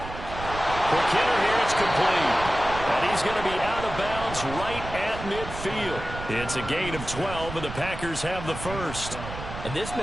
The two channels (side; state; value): right; noise; rumble, 10 dB below the sound